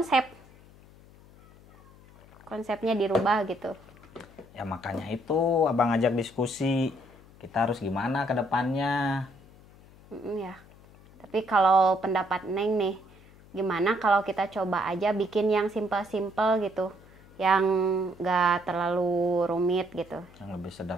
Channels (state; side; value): noise; left; hum, 24 dB below the sound